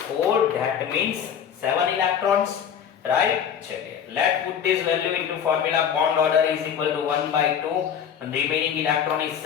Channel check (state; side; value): quieter; right; 8.3 dB